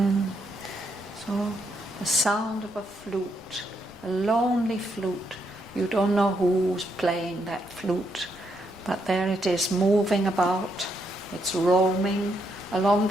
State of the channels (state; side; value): noise; left; rumble, 25 dB below the sound